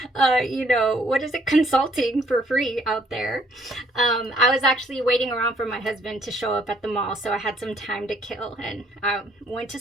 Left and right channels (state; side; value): normal; both; correlation 0.64